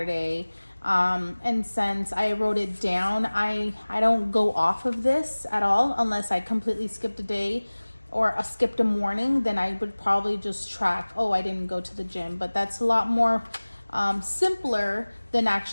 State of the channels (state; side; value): inverted; both; correlation -1.00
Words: And since I wrote it down, I don't go off of this at all unless I completely skipped a day or skipped a morning. Then I would probably just track, oh, I didn't go to the gym. But that's a lot more simpler than